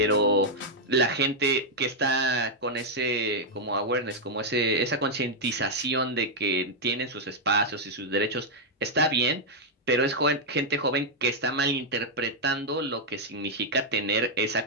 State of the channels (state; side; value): normal; both; correlation -0.02